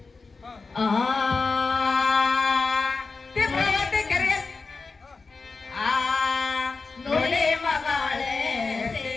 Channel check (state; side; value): quieter; right; 4.2 dB